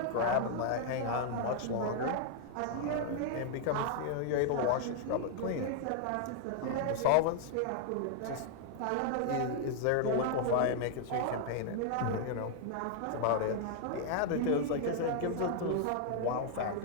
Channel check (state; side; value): different; both; correlation 0.00